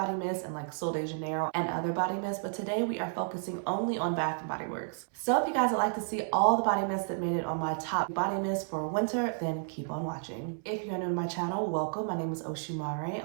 mist and like Sol de Janeiro and other body mists, but today we are focusing only on Bath & Body Works. So if you guys would like to see all the body mists that made it on my top body mists for winter, then keep on watching. If you're new to my channel, welcome. My name is Oshimare.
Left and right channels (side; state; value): left; silent; 57 dB below the other